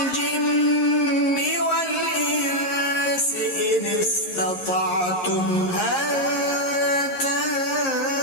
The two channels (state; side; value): late; right; 11 ms